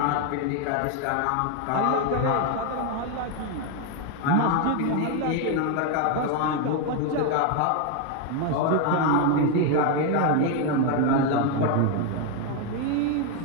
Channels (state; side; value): different; both; correlation 0.01